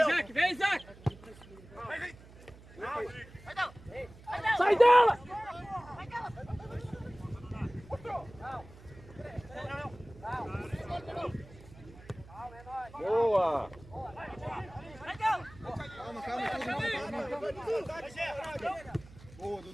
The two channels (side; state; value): right; noise; hum, 20 dB below the sound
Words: vem, Isaac! Sai dela! Boa! Boa,